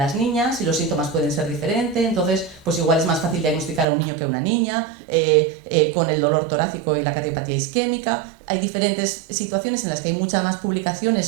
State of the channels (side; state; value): left; drops out; at 3.9 s